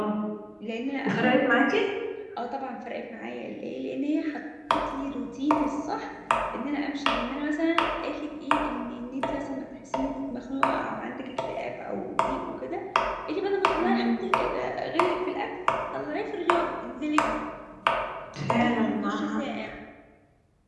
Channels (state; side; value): identical; both; correlation 1.00